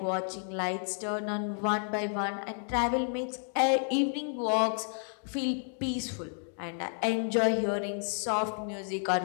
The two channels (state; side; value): silent; right; 57 dB below the other